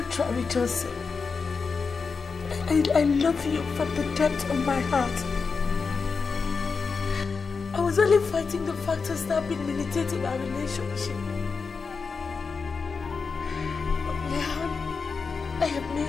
Joseph. I love you from the depth of my heart. I was only fighting the factors that have been militating our relationship. But now, I have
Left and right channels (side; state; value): right; quieter; 5.0 dB